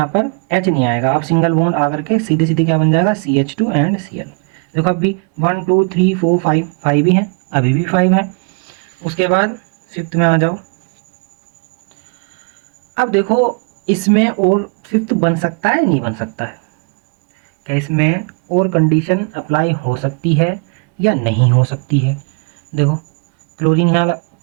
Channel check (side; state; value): left; quieter; 36.3 dB